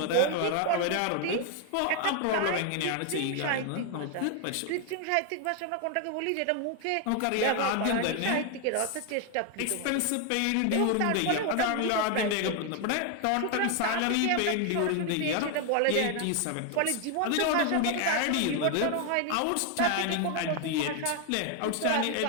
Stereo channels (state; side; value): different; both; correlation 0.01